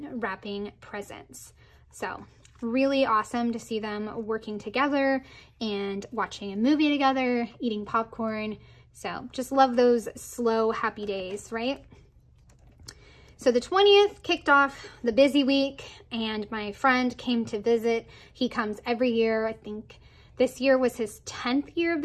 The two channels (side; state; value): both; identical; correlation 1.00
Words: wrapping presents. So really awesome to see them working together and watching a movie together, eating popcorn. So just love those slow, happy days, right? So the 20th kicked off the busy week and my friend came to visit. He comes every year. I think this year was his 10th year of